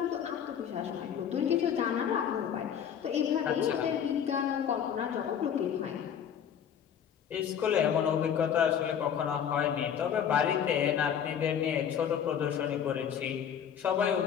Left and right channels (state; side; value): quieter; right; 8.5 dB